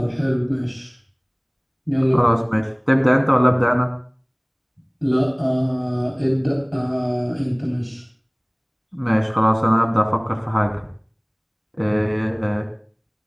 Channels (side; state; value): both; identical; correlation 1.00